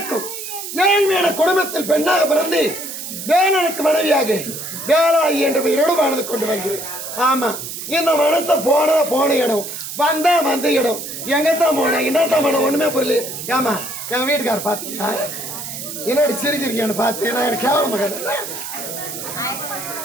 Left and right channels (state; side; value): noise; right; hiss, 8 dB below the sound